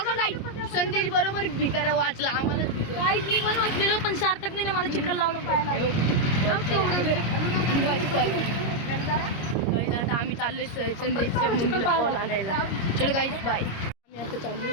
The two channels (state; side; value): late; right; 25 ms